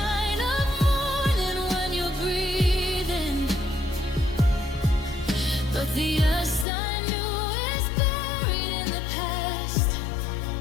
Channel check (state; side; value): drops out; right; at 6.7 s